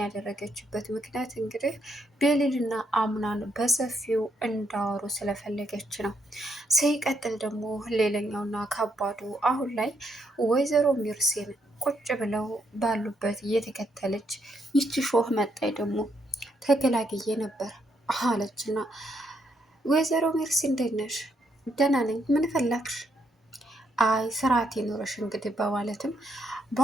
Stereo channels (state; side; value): normal; both; correlation 0.76